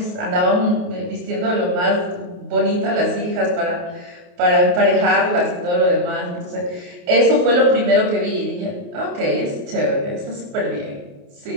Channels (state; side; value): late; left; 28 ms